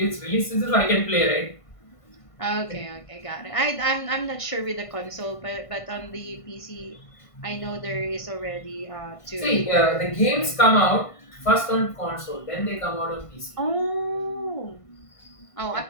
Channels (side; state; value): right; late; 1.5 ms